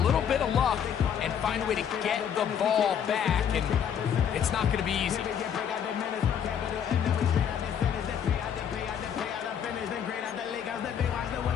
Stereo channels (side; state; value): right; quieter; 8.4 dB